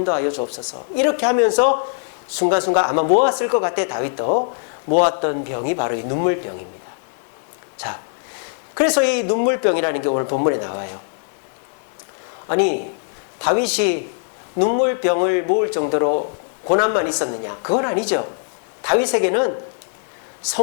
주옵소서. 이렇게 하면서 순간순간 아마 모았을 것 같아. 다윗도 모았던 병이 바로 이 눈물병입니다. 자, 그래서 이 눈물병이라는 게 오늘 본문에 나와요. 아니, 다윗이 눈물병을 모을 정도로 고난만 있었느냐? 그건 아니죠. 다윗에게는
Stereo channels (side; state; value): right; silent; 61 dB below the other